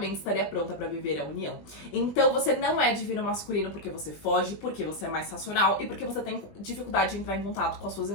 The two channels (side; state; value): right; late; 20 ms